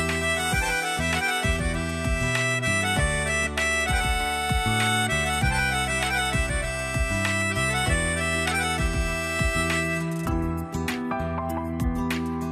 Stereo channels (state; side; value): identical; both; correlation 1.00